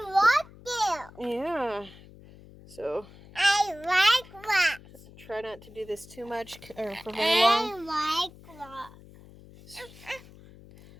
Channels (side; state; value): left; noise; hum, 21 dB below the sound